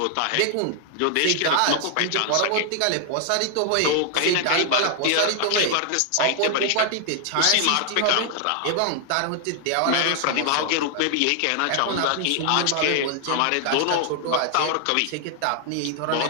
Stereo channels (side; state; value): both; different; correlation 0.00